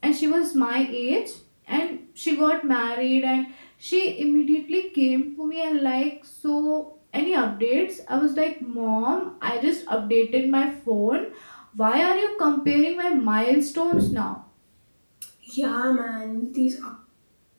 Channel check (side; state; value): both; inverted; correlation -1.00